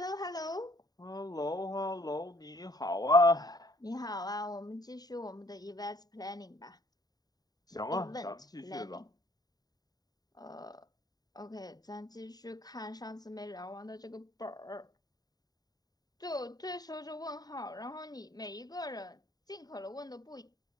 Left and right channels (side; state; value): right; late; 0.19 ms